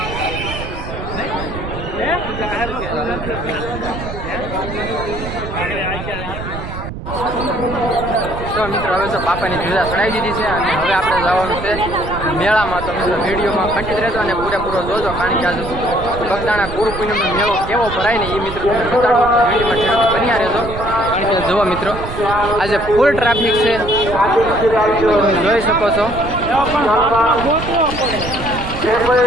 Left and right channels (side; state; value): right; noise; rumble, 9 dB below the sound